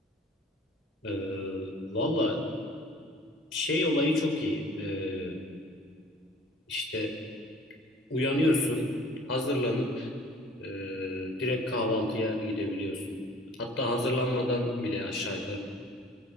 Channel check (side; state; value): both; normal; correlation 0.50